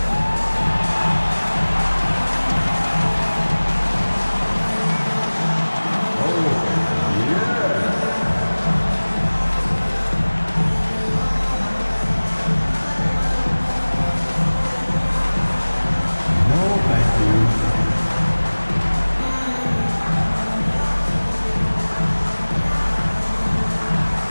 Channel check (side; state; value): both; inverted; correlation -1.00